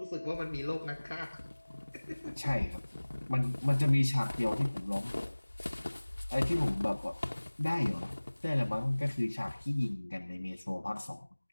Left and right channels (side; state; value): both; inverted; correlation -1.00